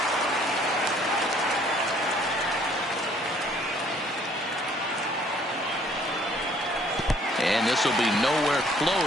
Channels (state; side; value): normal; both; correlation 0.60